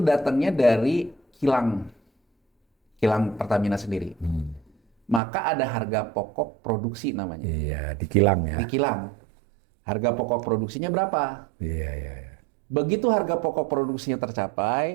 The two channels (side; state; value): left; drops out; at 5.2 s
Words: dari kilang Pertamina sendiri. Maka ada harga pokok produksi namanya. Iya, di kilang ya. Di kilang. Harga pokok produksinya berapa? Iya. Begitu harga pokok produksinya